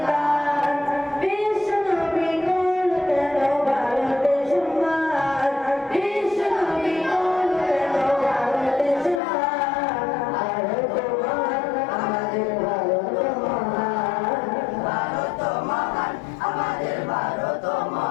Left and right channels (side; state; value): right; drops out; at 9.2 s